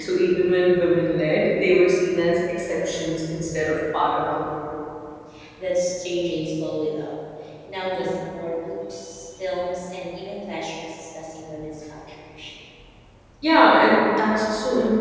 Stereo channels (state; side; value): identical; both; correlation 1.00